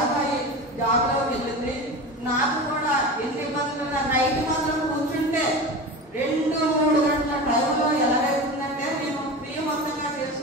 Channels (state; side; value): normal; both; correlation 0.29